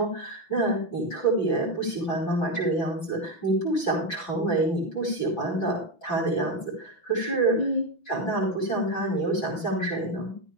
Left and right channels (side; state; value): right; late; 6.0 ms